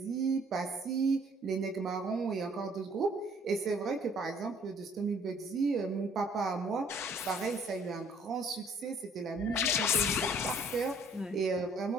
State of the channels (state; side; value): normal; both; correlation 0.59